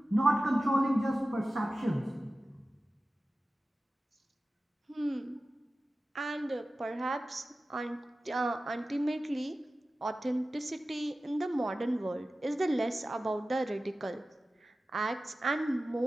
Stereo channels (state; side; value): normal; both; correlation 0.95